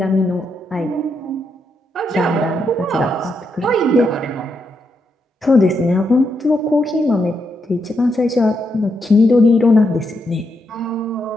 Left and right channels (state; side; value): normal; both; correlation 0.81